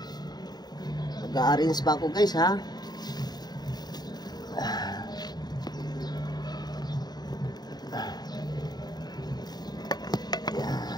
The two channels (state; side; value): late; right; 0.20 ms